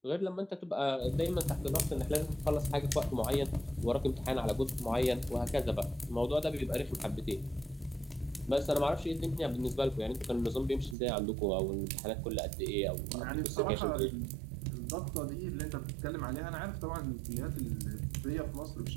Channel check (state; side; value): drops out; left; at 11.0 s